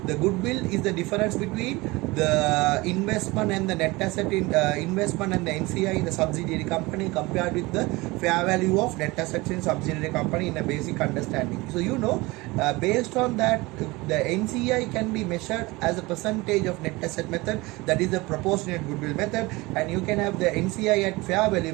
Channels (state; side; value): quieter; left; 22.4 dB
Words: goodwill is the difference between the investment and the net asset in investment and the NCI in the subsidiary company compared with the fair value of net assets in subsidiary company in a basic understanding. So you know, based on that, the NCI can be measured as a percentage of net asset method, that is the proportionate goodwill method, and you can have the NCI at fair value